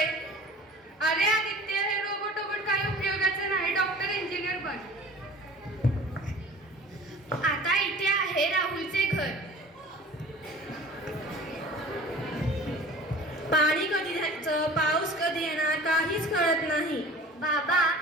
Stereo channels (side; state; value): both; normal; correlation 0.43